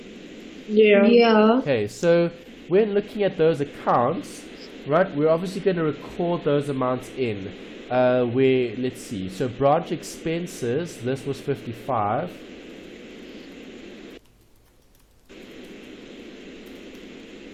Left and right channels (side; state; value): both; identical; correlation 1.00